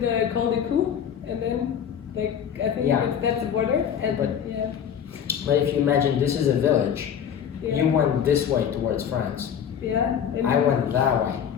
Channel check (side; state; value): right; quieter; 8.5 dB